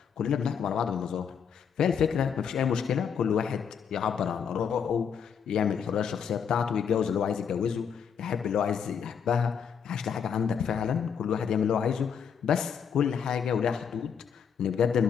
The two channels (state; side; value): quieter; right; 7.3 dB